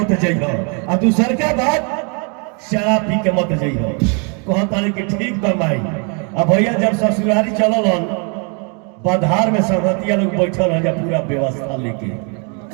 जाइयो, आ दूसर का बात शराब पी के मत जाइयो। कहता कि ठीक बा माई। अब भैया जब ससुरारी चलल बधार में संगतिया लोग बैठल है पूरा व्यवस्था लेके,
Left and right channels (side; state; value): left; quieter; 36.6 dB